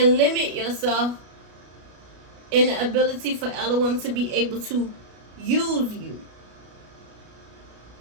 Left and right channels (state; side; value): late; left; 33 ms